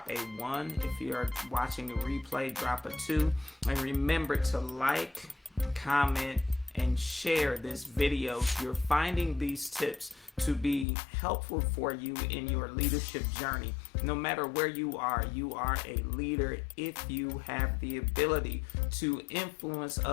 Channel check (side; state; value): right; drops out; at 10.9 s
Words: a 1. If you are watching the replay, drop a 2. And remember to like, comment, and share this video. You're finding these tips to be helpful for you in your leadership journey. No matter where you are a leader if you have the ability to influence